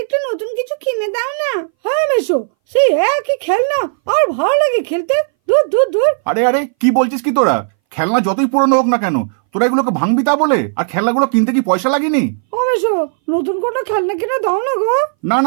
একটু নতুন কিছু কিনে দাও না। হ্যাঁ মেশো, সেই একই খেলনা আর ভালো লাগে খেলতে। দূর দূর দূর। আরে আরে, কি বলছিস কি তোরা? খেলনা যতই পুরনো হোক না কেন, তোরা এগুলোকে ভাঙবি তা বলে? আর খেলনাগুলো কিনতে কি পয়সা লাগেনি? ও মেশো, নতুন কোনো খেলনা কিনে দাও না গো। না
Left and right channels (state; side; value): silent; left; 63 dB below the other